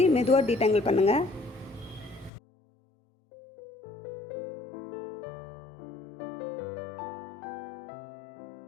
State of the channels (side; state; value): right; drops out; at 2.3 s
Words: மெதுவாக டீடாங்கிள் பண்ணுங்கள்.